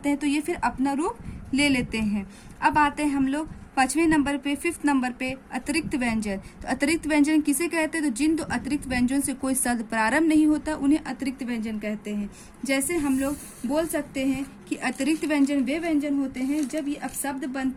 हैं तो ये फिर अपना रूप ले लेते हैं। अब आते हैं हम लोग 5वें नंबर पे, 5th नंबर पे अतिरिक्त व्यंजन। तो अतिरिक्त व्यंजन किसे कहते हैं? तो जिन दो अतिरिक्त व्यंजन से कोई शब्द प्रारंभ नहीं होता उन्हें अतिरिक्त व्यंजन कहते हैं। जैसे हम लोग बोल सकते हैं कि अतिरिक्त व्यंजन वे व्यंजन होते हैं जब ये अपशब्द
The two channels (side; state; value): both; identical; correlation 1.00